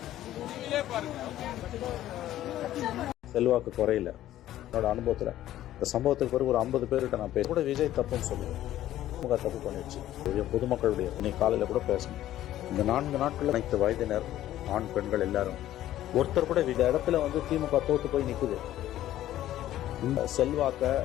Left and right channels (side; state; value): right; quieter; 13.3 dB